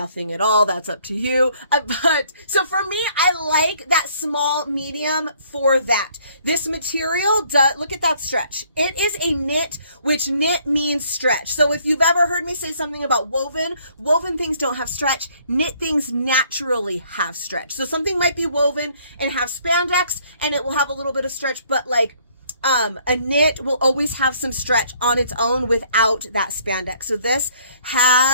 at all. That's up to you. But so for me, I like that small medium for that. This material does, look at that stretch. It is a knit, which knit means stretch. So if you've ever heard me say something about woven things don't have stretch. Knit things naturally have stretch. So something might be woven and have spandex and it will have a little bit of stretch, but like a knit will always have some stretch on its own without that spandex. So this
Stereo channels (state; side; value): inverted; both; correlation -0.62